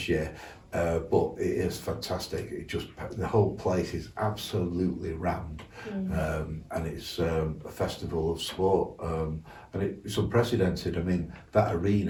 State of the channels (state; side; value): identical; both; correlation 1.00